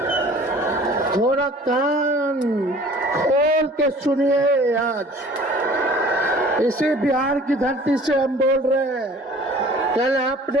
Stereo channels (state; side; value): normal; both; correlation 0.49